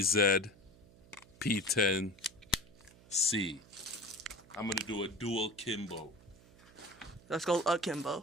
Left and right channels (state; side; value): noise; right; hum, 24 dB below the sound